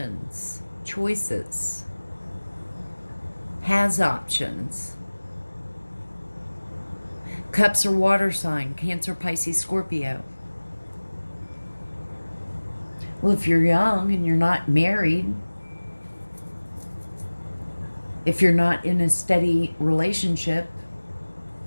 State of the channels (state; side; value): inverted; both; correlation -1.00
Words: choices. Has options. Cups are water sign, Cancer, Pisces, Scorpio. Well, if you're young and you're not married, if you're not in a steady relationship,